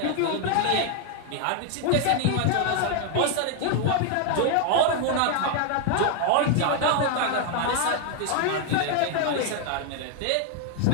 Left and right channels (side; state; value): both; different; correlation 0.00